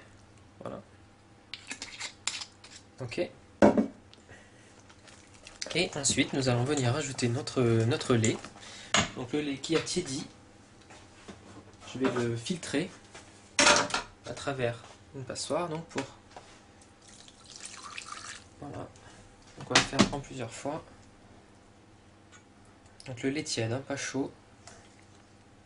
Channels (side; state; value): both; identical; correlation 1.00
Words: voilà. Ok. Et ensuite, nous allons venir ajouter notre lait. Donc le lait qui a tiédi, je vais le filtrer à travers une passoire. Donc voilà. Donc on va le faire en plusieurs fois. Donc le lait tiède, hein, pas chaud.